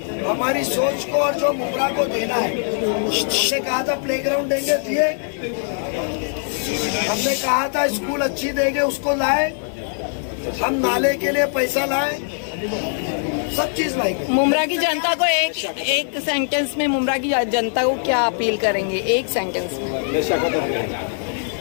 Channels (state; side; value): silent; right; 65 dB below the other